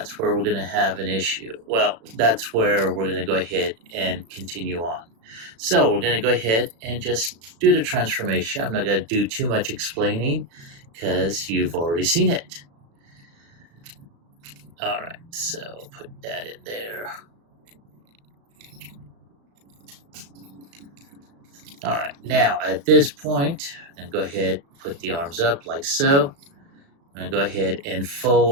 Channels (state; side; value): late; left; 36 ms